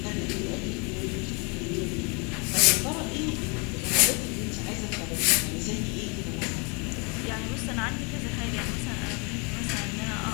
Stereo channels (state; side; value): quieter; right; 32.3 dB